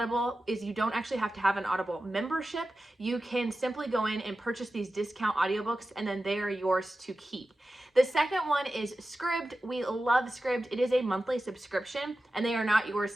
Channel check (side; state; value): both; normal; correlation 0.94